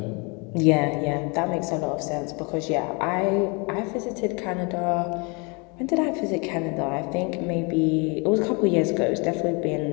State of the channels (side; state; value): right; quieter; 31.2 dB